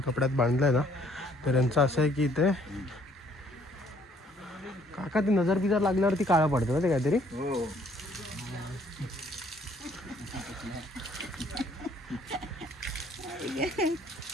कपड्यात बांधलंय ना. तर यांचं असं आहे की इथे काका ते नजर बिजर लागल्यावरती काळं पडतं ना ते काहीतरी.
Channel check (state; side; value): normal; both; correlation 0.63